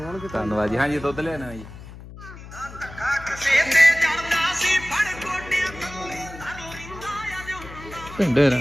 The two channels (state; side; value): noise; left; hum, 15 dB below the sound